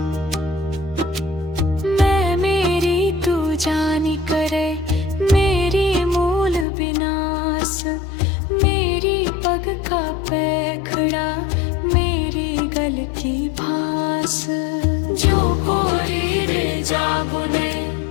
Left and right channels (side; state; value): right; drops out; at 6.7 s